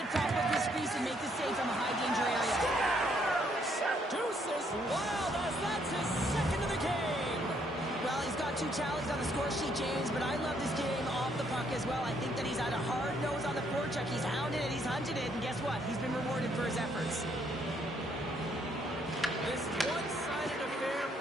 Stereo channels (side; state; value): both; normal; correlation 0.70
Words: top of his crease and make the save from a high danger area. Deuces wild as that's his second of the game. Well, he's got 2 tallies on the score sheet, James, but I love this game off the puck as well. I think that he's had a hard nose on the forecheck. He's hounded it, he's hunted it, and guess what? He's been rewarded for his efforts. This one-sided affair